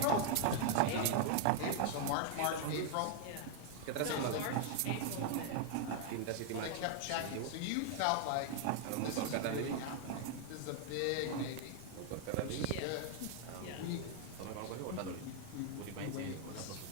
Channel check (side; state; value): both; different; correlation 0.00